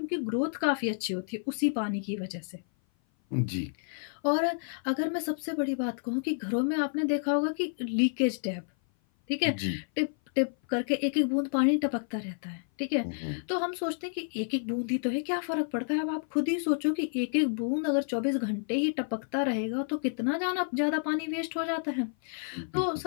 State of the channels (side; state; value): right; silent; 56 dB below the other